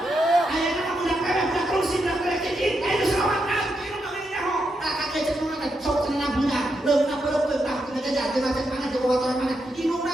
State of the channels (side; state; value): both; normal; correlation 0.83